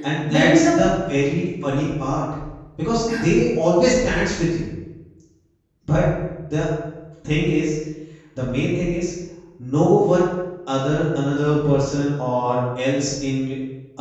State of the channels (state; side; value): identical; both; correlation 1.00